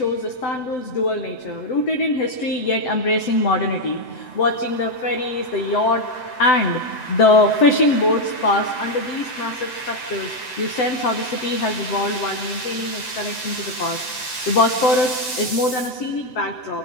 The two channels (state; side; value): late; right; 7.8 ms